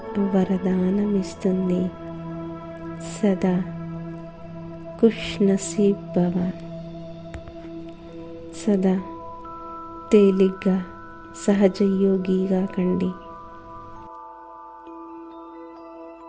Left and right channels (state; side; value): identical; both; correlation 1.00